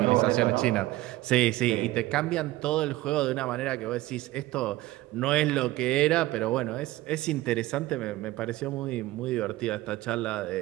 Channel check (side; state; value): left; quieter; 17.3 dB